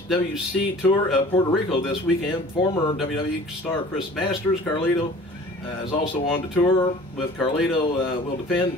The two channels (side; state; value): both; normal; correlation 0.46